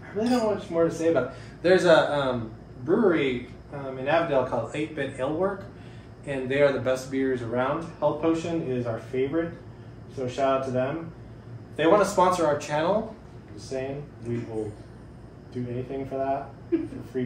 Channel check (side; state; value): both; identical; correlation 1.00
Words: really don't know much more to say about it. There's a brewery in Avondale called 8-Bit Ale Work, and they are the best beers around. Health Potion is our favorite, so shout out to them. If they want to sponsor our channel, just saying, we will do anything for that, for free